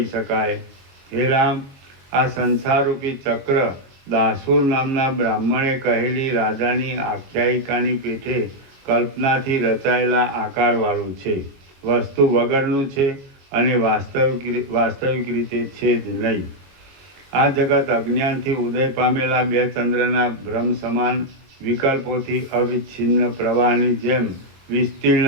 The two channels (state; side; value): late; left; 22 ms